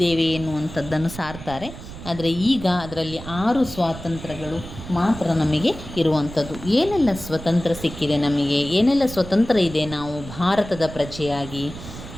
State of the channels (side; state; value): right; noise; rumble, 13 dB below the sound